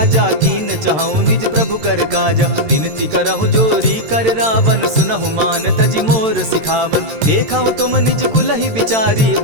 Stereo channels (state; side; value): late; left; 13 ms